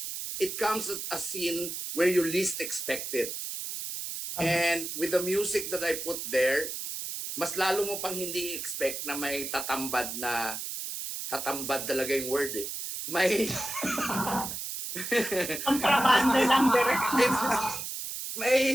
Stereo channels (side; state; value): right; noise; hiss, 6 dB below the sound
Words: it comes at a scene where you least expect it. And with the music that I put there, mas lalo mo pang hindi expect na may tatambad talaga yung word eh. May kontrabando lang direct.